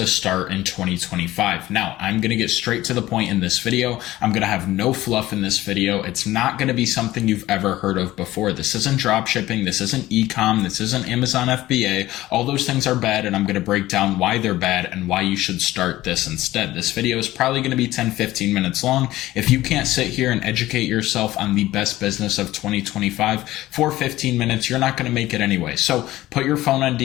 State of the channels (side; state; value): right; quieter; 16.2 dB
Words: start in 2025. Now, I'm going to get straight to the point in this video. I'm going to have no fluff in this video. It's not going to be something you've ever heard of before. This isn't drop shipping. This isn't e-com. This isn't Amazon FBA. All those things are bad, and I'm going to break down why they're bad and why you should start this instead. This video is probably going to be 10-15 minutes long. If you can't sit here and educate yourself on the best business of 2025 for 15 minutes, you're not going to make it anyway. So put your phone on